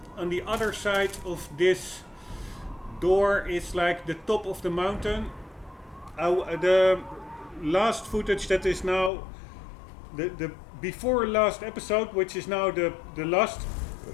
on the other side of this door is like the top of the mountain. The last footage that is now the before last episode, which is now the last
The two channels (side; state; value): right; drops out; at 9.1 s